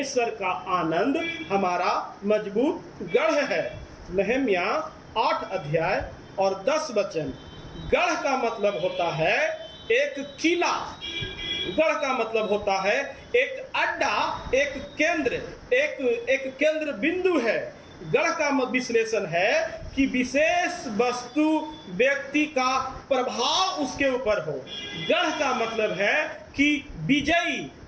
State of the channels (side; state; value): both; identical; correlation 1.00